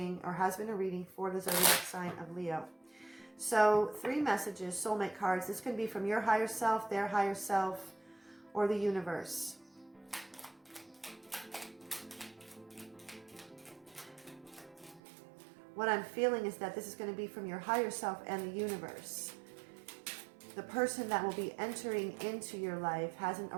or has been a reading, for the zodiac sign of Leo. So 3 messages, soulmate cards. This can be from your higher self, their higher self, or the universe. What I'm feeling is that this is going to be from your higher self and the universe. The person that will be entering into your life hasn't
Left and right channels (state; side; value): drops out; left; at 15.0 s